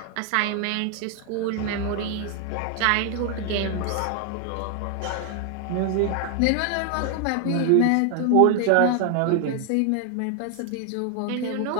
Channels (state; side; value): different; both; correlation 0.00